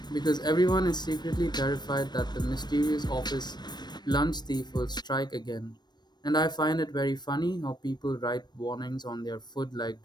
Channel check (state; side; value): late; right; 0.21 ms